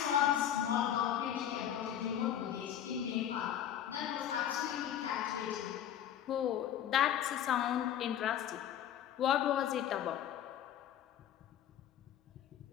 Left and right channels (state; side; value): quieter; right; 10.4 dB